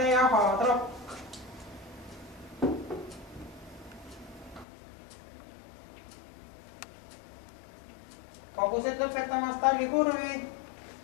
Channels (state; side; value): drops out; right; at 4.7 s